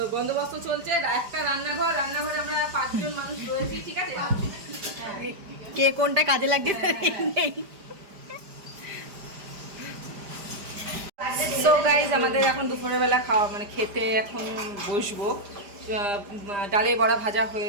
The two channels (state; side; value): late; left; 5.0 ms